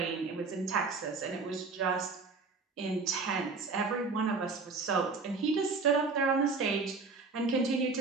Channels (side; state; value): left; quieter; 4.2 dB